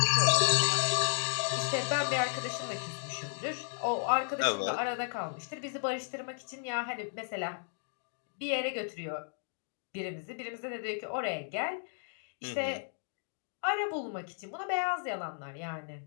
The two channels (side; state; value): right; silent; digital silence